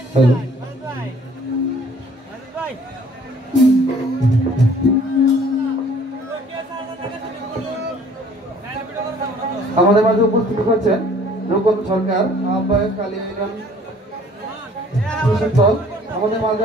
হ্যালো, আমাদের মাঝে উপস্থিত হচ্ছেন রূপন সরকার, আহ্বায়ক কালী ইউনিয়ন কৃষক দল। আমাদের মাঝে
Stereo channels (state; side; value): normal; both; correlation 0.56